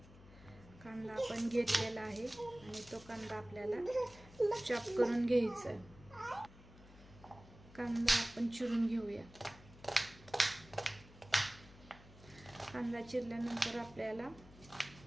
कांदा आपण घेतलेला आहे आणि तो कांदा आपल्याला चॉप करून घ्यायचा आहे। कांदा आपण चिरून घेऊया। कांदा चिरल्यानंतर आपल्याला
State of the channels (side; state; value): left; noise; hum, 20 dB below the sound